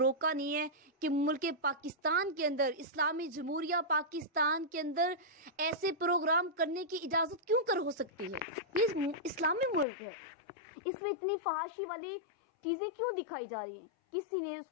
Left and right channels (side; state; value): right; drops out; at 9.9 s